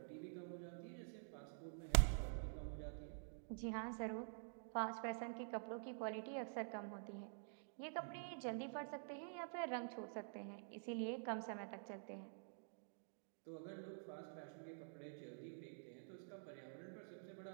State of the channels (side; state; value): left; silent; digital silence